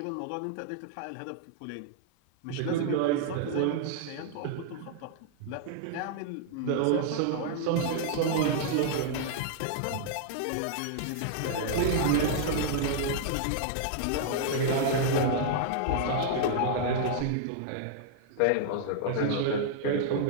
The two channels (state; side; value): different; both; correlation -0.01